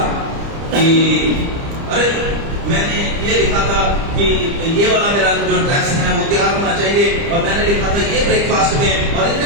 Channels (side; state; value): left; late; 30 ms